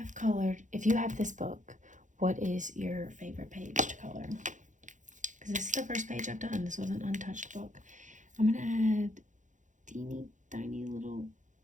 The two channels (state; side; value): late; left; 0.36 ms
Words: colored, if you have this book, what is your favorite page to color? Because this is the first page I've done. This was an untouched book. I'm going to add teeny tiny little